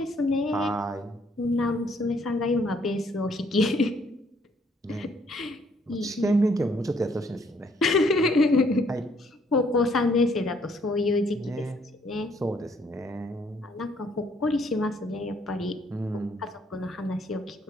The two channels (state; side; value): normal; both; correlation 0.66